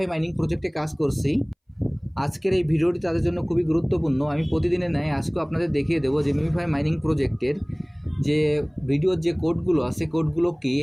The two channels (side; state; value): both; identical; correlation 1.00